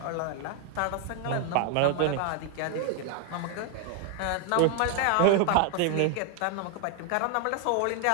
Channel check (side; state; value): both; different; correlation 0.01